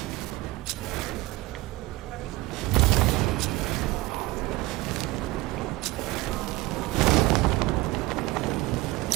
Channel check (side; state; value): left; quieter; 20.1 dB